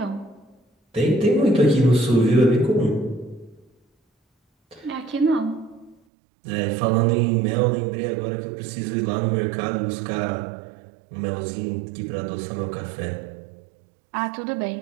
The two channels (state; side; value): drops out; left; at 6.0 s